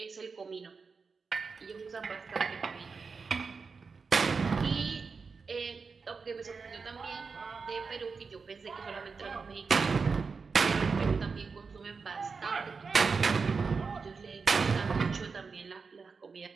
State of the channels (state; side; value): quieter; left; 4.9 dB